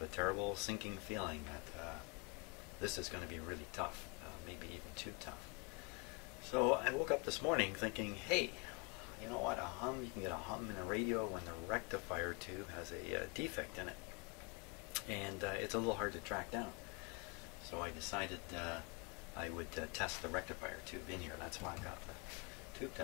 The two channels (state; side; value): quieter; right; 29.6 dB